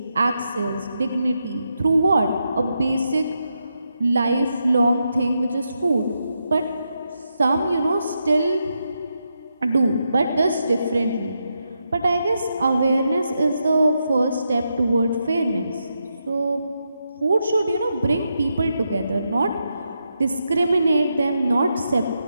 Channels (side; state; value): both; inverted; correlation -0.84